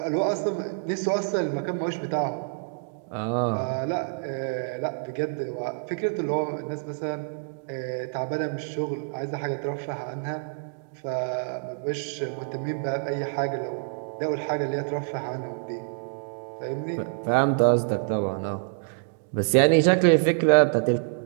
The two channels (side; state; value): left; silent; digital silence